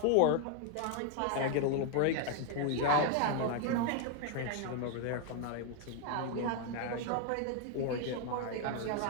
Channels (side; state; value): both; different; correlation 0.00